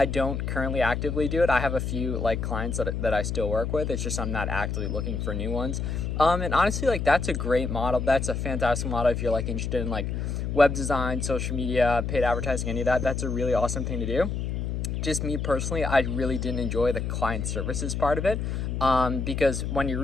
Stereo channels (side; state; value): left; noise; hum, 2 dB below the sound